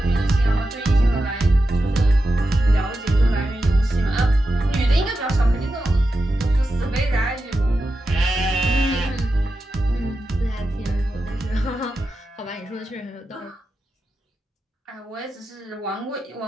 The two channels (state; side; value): normal; both; correlation 0.90